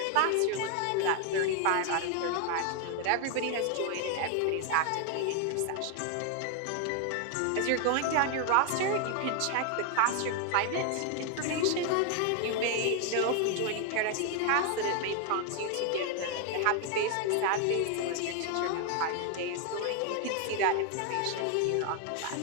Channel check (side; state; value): both; different; correlation 0.01